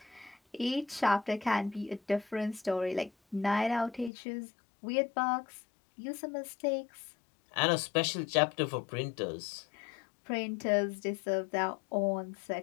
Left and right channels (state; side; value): drops out; right; at 4.1 s